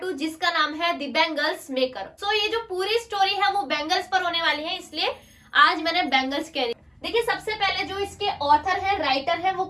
2, जिसका नाम है द बैंगल्स मेकर। सो ये जो पूरी स्टोरी है वो बैंगल्स पर होने वाली है, इसलिए आज मैंने बैंगल्स कह दी। देखिए, सबसे पहले जो इसके ऑथर है, राइटर है, वो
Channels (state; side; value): identical; both; correlation 1.00